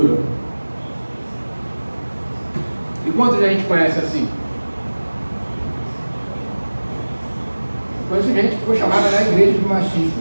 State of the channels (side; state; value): both; inverted; correlation -1.00